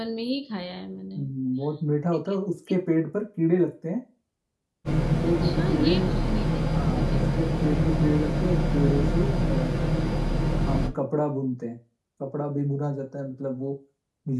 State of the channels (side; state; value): both; identical; correlation 1.00